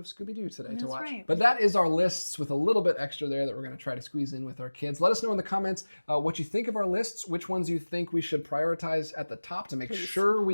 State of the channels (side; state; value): both; inverted; correlation -1.00